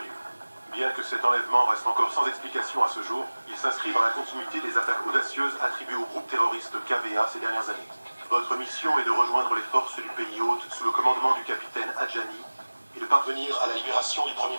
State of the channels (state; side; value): inverted; both; correlation -1.00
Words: Bien que cet enlèvement reste encore sans explication à ce jour, il s'inscrit dans la continuité des attaques audacieuses attribuées au groupe terroriste KVA ces dernières années. Votre mission est de rejoindre les forces du pays hôte sous le commandement du capitaine Adjani et de parvenir à la libération du Premier